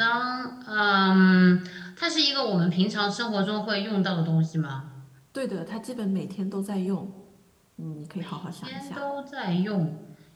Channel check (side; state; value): both; identical; correlation 1.00